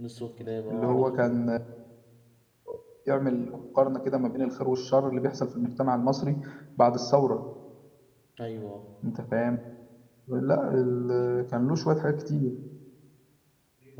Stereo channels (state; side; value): identical; both; correlation 1.00